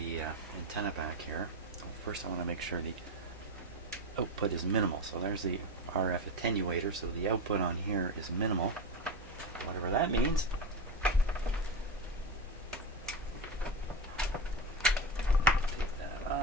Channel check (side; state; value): both; normal; correlation 0.18